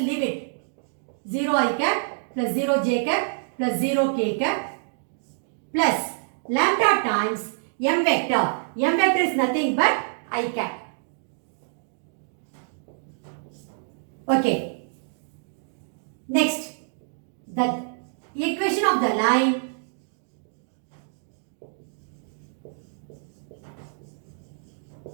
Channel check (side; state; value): left; silent; digital silence